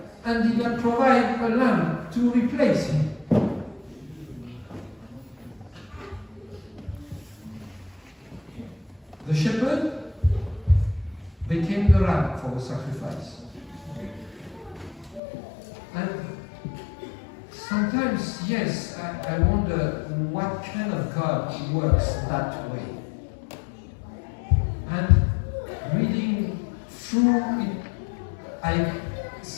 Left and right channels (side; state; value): right; drops out; at 15.2 s